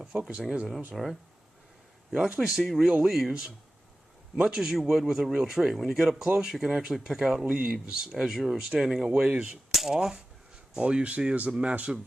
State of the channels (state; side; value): normal; both; correlation 0.95